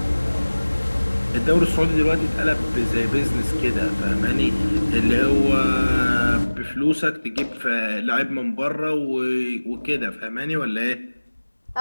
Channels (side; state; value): both; inverted; correlation -1.00